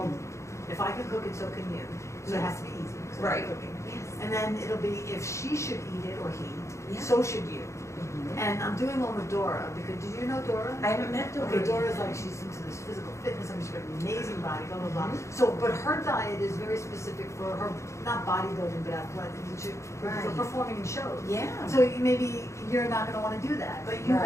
If I Can Cook It, So Can You. So it has to be easy. 'Cause I'm Right. Cooking. Yes. And then it'll be if she should eat it or he, Yeah. so should you. And I'm doing one with Dora because did you know Dora? I haven't met Dora. Okay, Dora's like she's into this physical fitness. I mean, she's got an amazing body, blah blah blah. So, but her diet is very specific for her, not bodybuilding, but athletic, for Right. performing in shows. Yeah. So maybe you're not going to want to do that, but you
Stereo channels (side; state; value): right; late; 0.14 ms